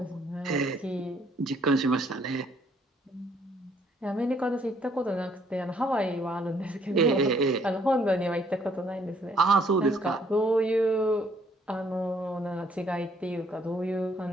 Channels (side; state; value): both; normal; correlation 0.65